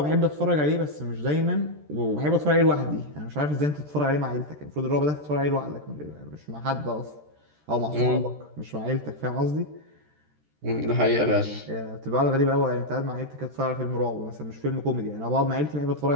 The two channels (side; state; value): left; late; 13 ms